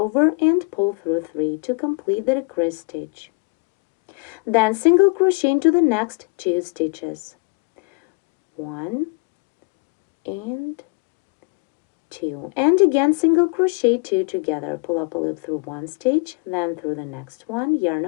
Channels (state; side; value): quieter; right; 31.9 dB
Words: and pull through 3 to complete the decrease stitch. Then single crochet into the next 2 stitches. 1 and 2, and again single crochet 2 together. Pull up a loop through one stitch, then through the next one, yarn